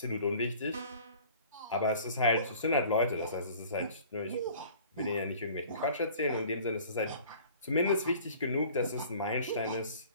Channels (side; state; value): both; inverted; correlation -0.48